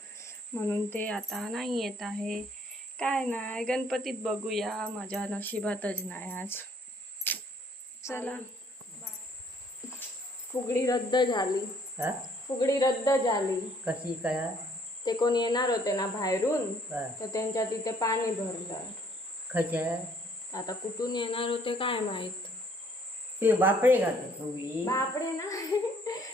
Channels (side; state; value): both; normal; correlation 0.62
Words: म्हणून ते आता नाही येत आहे. काय नाही, गणपतीत बघूया, माझ्या नशिबातच नाही आज. चला, फुगडी रद्द झाली. फुगडी रद्द झाली. कशी काय. ते कोण येणार होते ना बाहेरून, तर त्यांच्या तिथे पाणी भरलं. खच्या आता कुठून येणार होते काय माहित. ते बापडे घालते फुगडी. बापडे ना,